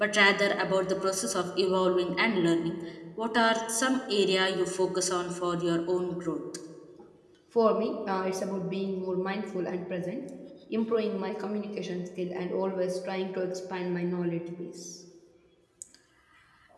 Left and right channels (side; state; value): both; identical; correlation 1.00